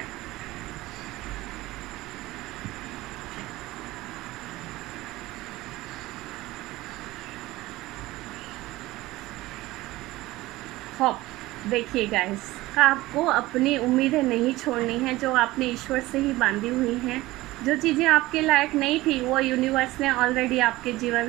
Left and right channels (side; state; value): left; quieter; 18.4 dB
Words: देखिए गाइस, आपको अपनी उम्मीदें नहीं छोड़नी है जो आपने ईश्वर से ही बांधी हुई हैं। जो चीज़ें आपके लायक नहीं थी वो यूनिवर्स ने ऑलरेडी आपके